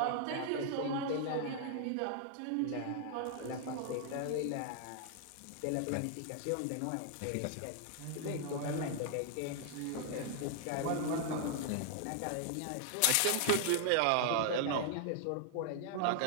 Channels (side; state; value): both; different; correlation 0.00